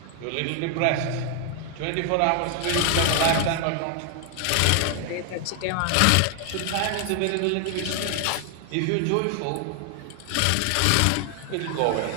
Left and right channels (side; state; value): both; different; correlation 0.00